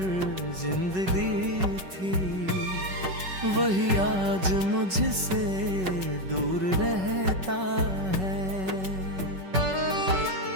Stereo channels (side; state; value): left; late; 5.3 ms